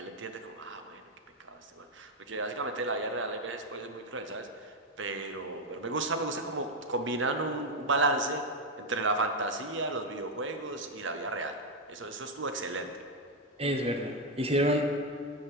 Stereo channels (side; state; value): both; normal; correlation 0.05